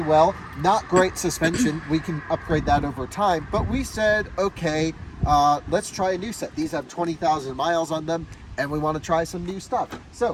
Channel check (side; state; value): both; identical; correlation 1.00